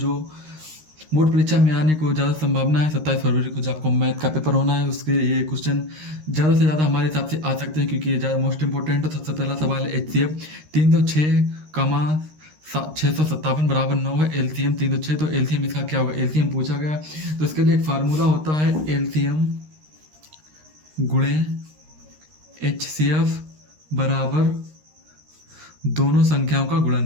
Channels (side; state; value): left; late; 13 ms